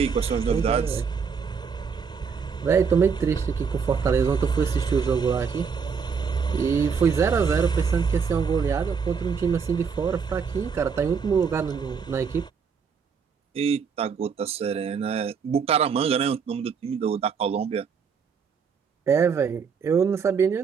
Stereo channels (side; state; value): left; quieter; 6.1 dB